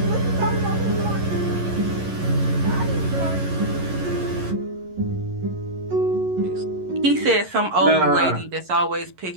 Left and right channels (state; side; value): late; left; 11 ms